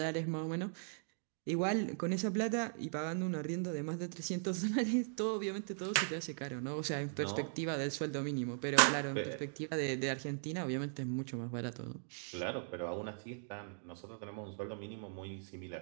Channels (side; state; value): left; silent; digital silence